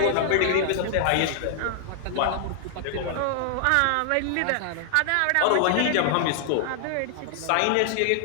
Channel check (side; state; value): both; different; correlation -0.01